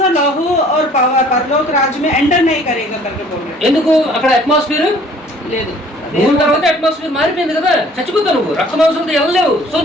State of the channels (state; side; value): normal; both; correlation 0.54